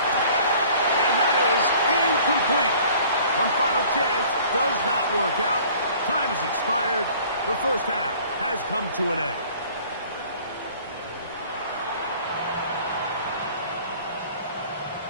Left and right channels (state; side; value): inverted; both; correlation -0.51